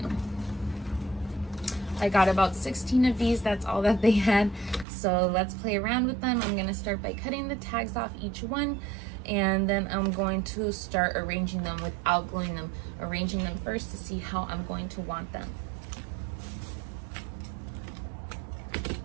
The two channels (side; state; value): left; drops out; at 4.9 s